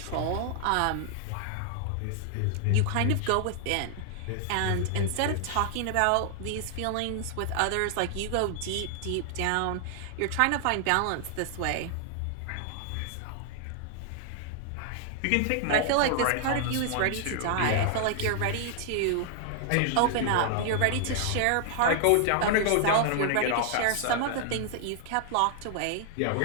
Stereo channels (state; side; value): different; both; correlation 0.00